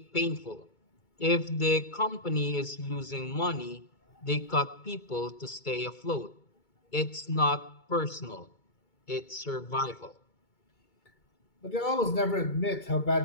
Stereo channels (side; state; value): right; late; 2.2 ms